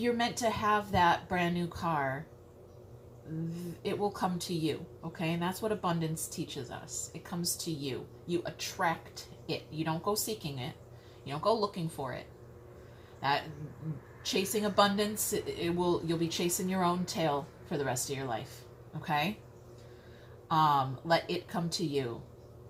meant to have that brand new car, it will come to you, okay? And that's what abundance teaches us. It comes to you. You attract it. You don't go seeking it. You don't go looking for it. That chasing abundance, you'll be chasing your own tail for the rest of your life, okay? Let it come to you.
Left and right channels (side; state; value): both; identical; correlation 1.00